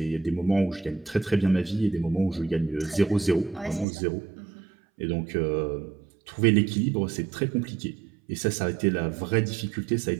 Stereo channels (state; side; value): drops out; left; at 3.9 s